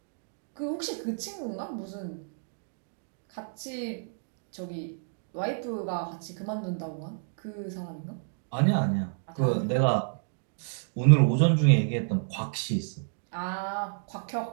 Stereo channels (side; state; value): left; silent; digital silence